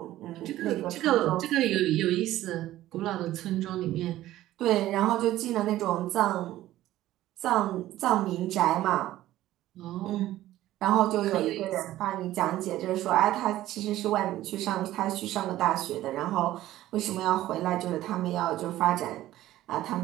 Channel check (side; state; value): left; quieter; 14.7 dB